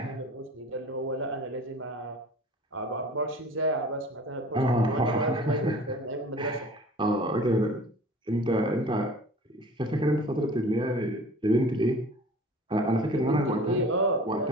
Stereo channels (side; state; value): both; normal; correlation 0.44